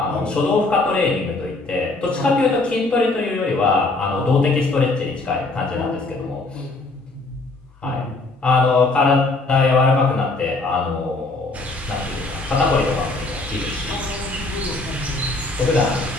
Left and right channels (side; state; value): right; quieter; 3.2 dB